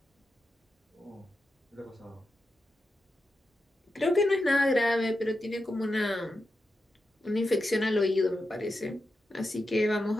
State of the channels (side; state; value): both; normal; correlation 0.89